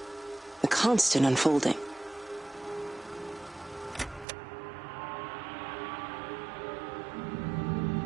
The constant unfolding.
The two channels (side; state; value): left; drops out; at 4.2 s